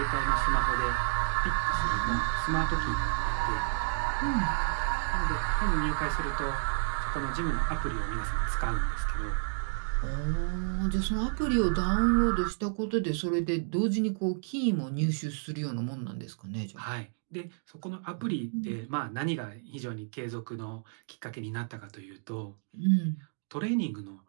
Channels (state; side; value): silent; left; digital silence